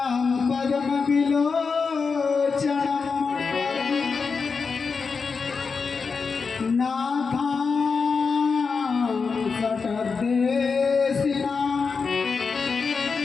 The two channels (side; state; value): right; quieter; 5.1 dB